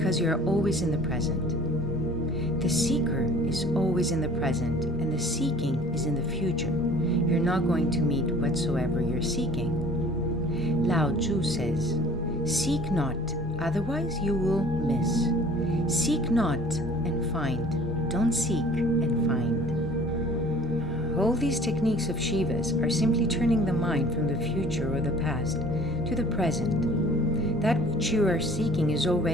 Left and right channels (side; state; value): both; normal; correlation 0.49